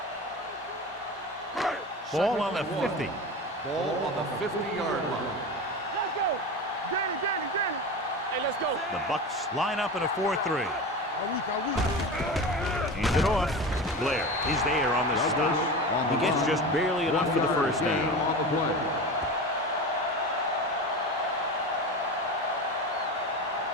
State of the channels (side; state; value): both; normal; correlation 0.28